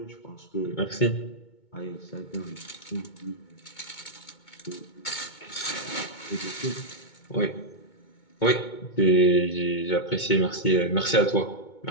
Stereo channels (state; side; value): late; right; 2.2 ms